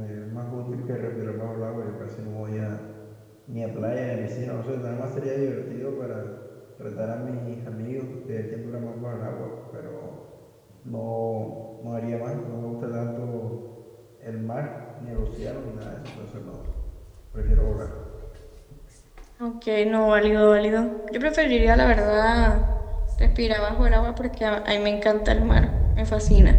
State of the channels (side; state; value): both; identical; correlation 1.00